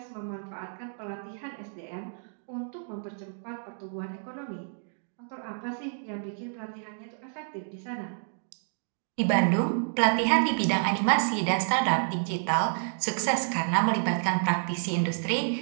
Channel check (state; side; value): silent; left; digital silence